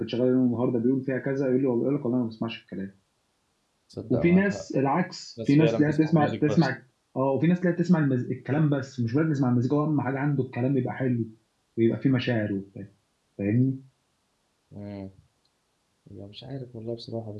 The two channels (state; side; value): identical; both; correlation 1.00